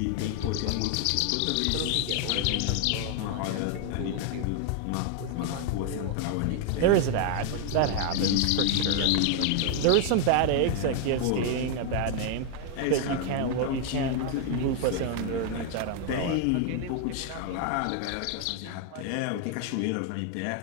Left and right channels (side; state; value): both; different; correlation 0.00